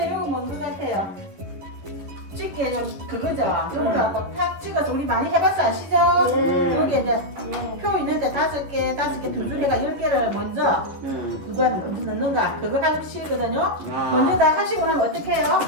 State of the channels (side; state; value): left; late; 11 ms